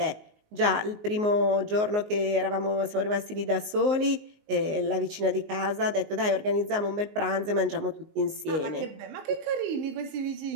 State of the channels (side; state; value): left; late; 19 ms